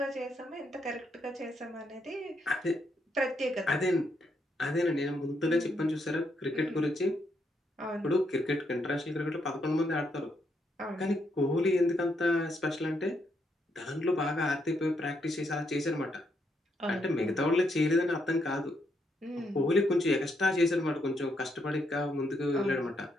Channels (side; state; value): both; normal; correlation 0.77